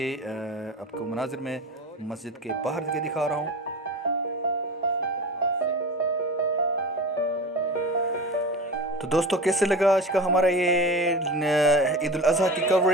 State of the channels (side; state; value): both; normal; correlation 0.30